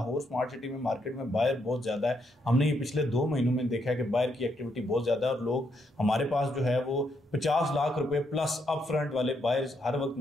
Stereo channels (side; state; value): both; normal; correlation 0.77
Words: स्मार्ट सिटी में मार्केट में बायर बहुत ज्यादा है। हमने ये पिछले 2 महीनों में देखा है कि बायर की एक्टिविटी बहुत ज्यादा है और लोग हमारे पास जो है वो 50 लाख रुपए प्लस अप फ्रंट वाले बायर्स हर वक्त